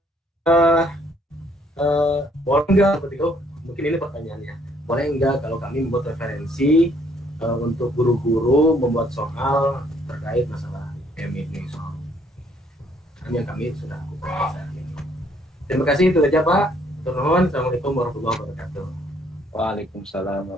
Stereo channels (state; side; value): normal; both; correlation 0.65